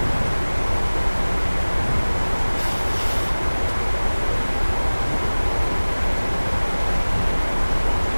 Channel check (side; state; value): both; inverted; correlation -1.00